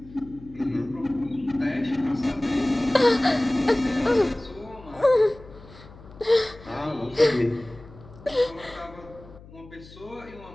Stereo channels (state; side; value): noise; left; hum, 20 dB below the sound